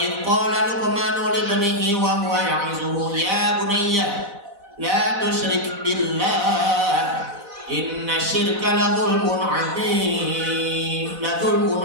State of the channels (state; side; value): late; left; 4.0 ms